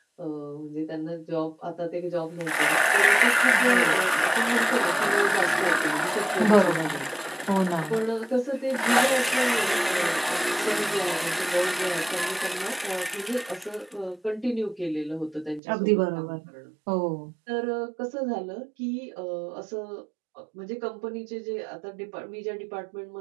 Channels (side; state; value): left; drops out; at 15.6 s